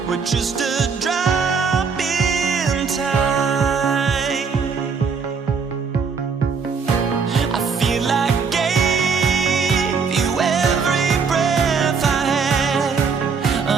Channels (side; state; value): left; quieter; 5.5 dB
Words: We're just a drop in time. I feel like I gave you every breath I had.